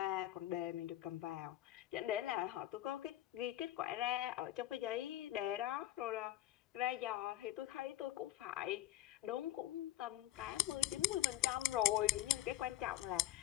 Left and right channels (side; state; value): right; quieter; 14.2 dB